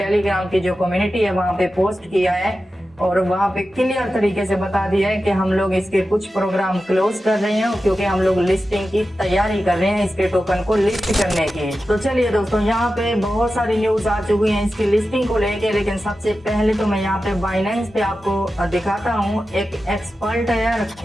की जो कम्युनिटी है वहां पे पोस्ट किया है और वहां पे क्लियर तरीके से बता दिया है कि हम लोग इसके कुछ प्रोग्राम क्लोज कर रहे हैं क्योंकि हम लोग लिस्टिंग की तैयारी कर रहे हैं इसके टोकन को लिस्ट करने की। तो चलिए दोस्तों यहाँ पे बहुत सारी न्यूज आ चुकी हैं इसकी लिस्टिंग को लेके, लेकिन सबसे पहले तो मैं यहाँ पे बाइनेंस पे आपको दिखाता हूँ। एक एक्सपर्ट है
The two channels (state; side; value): normal; both; correlation 0.92